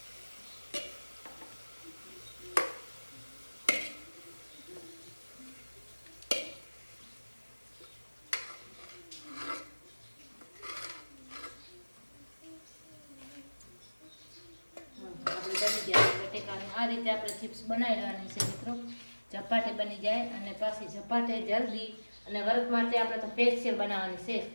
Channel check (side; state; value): both; inverted; correlation -1.00